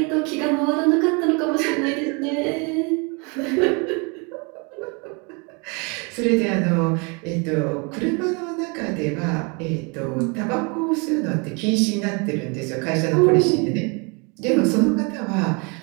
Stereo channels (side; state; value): left; quieter; 32.0 dB